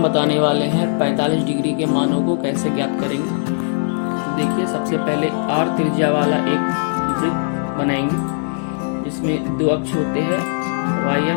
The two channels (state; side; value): silent; right; digital silence